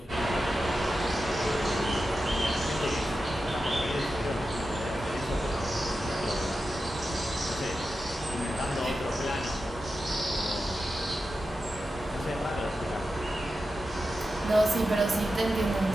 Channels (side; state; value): both; normal; correlation 0.91